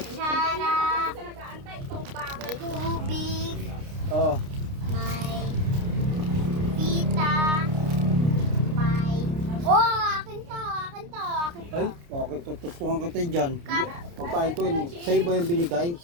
Sa nag-aantay, itong bagal. Tubig. Oh. May pita. May... Oh, akin to. Akin to. Akin to. Ay, bakit tutustukan kita dyan? Kap. Pagkain ko yun eh. Sa'yo ba yung binigay?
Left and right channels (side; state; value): left; late; 29 ms